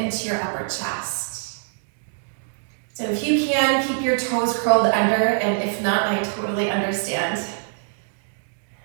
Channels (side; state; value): left; silent; digital silence